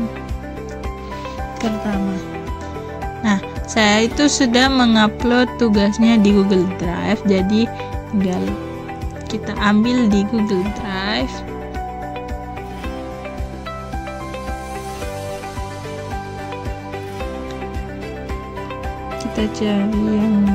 pertama. Nah, saya itu sudah mengupload tugasnya di Google Drive, jadi tinggal kita ambil di Google Drive. Kita cari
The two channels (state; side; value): identical; both; correlation 1.00